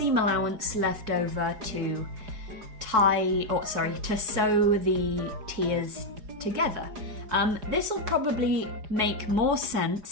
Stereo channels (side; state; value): left; late; 4.6 ms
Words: allowance left over to to sew the tiers together. This will probably make more